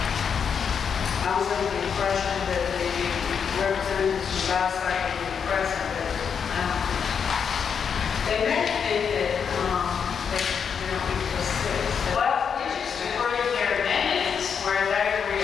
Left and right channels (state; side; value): quieter; right; 6.9 dB